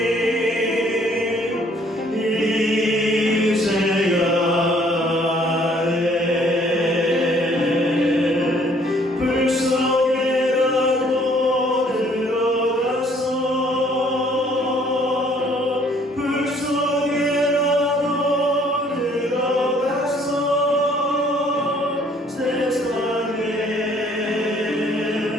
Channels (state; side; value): normal; both; correlation 0.61